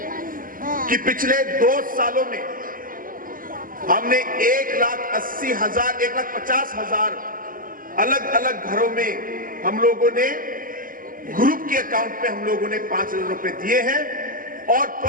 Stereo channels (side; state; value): left; late; 0.41 ms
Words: कि पिछले 2 सालों में हमने 1,80,000 1,50,000 अलग अलग घरों में हम लोगों ने ग्रुप के अकाउंट में हम लोगों ने 5,000 रुपए दिए हैं और